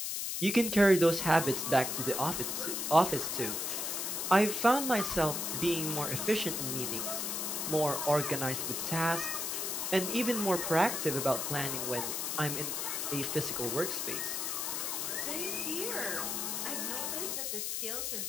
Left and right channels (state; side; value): noise; left; hiss, 2 dB below the sound